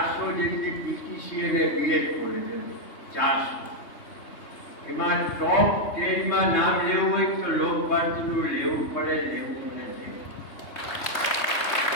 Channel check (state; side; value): late; right; 3.2 ms